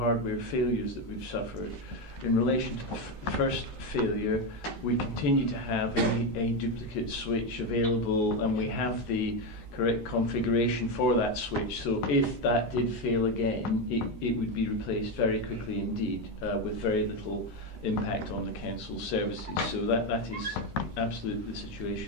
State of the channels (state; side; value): late; right; 13 ms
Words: failures that we've suffered, in relation to the first failure, we continue to have a duplicate switch available, and we have the correct configuration for that switch. So if that did fail again, it would be replaced very quickly indeed, with very little impact on the council's services. So that is absolutely the